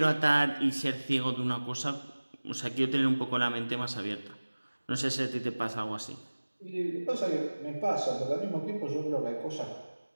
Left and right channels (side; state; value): both; inverted; correlation -1.00